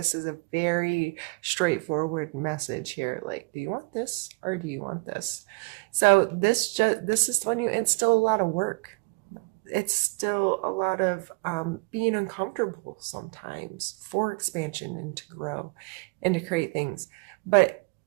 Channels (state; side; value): quieter; left; 29.4 dB